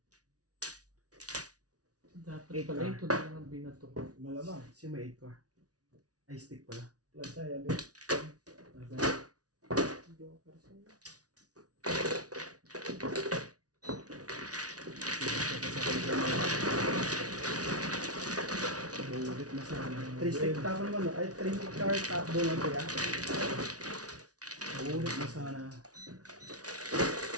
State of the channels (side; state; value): left; late; 0.68 ms